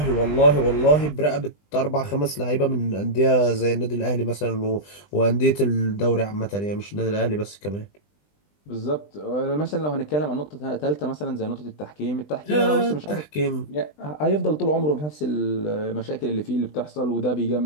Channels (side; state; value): right; late; 20 ms